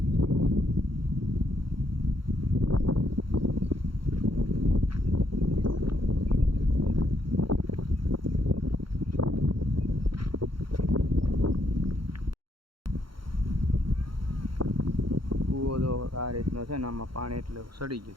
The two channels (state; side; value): late; left; 0.73 ms